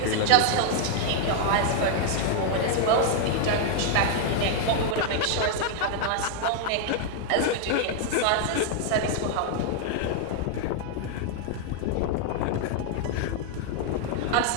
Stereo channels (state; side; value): different; both; correlation 0.00